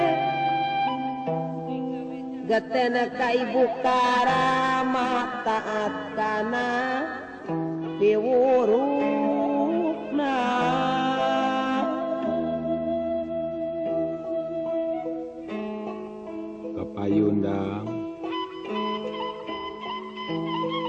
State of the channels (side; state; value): both; identical; correlation 1.00